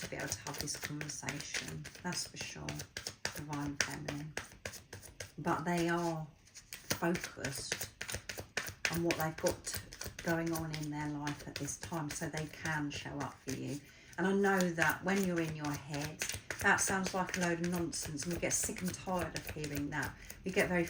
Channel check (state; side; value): identical; both; correlation 1.00